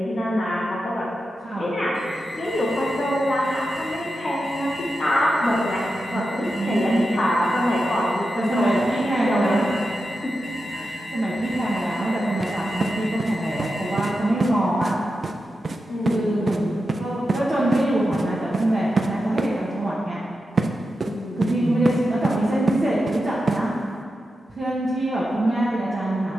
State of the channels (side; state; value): both; normal; correlation 0.89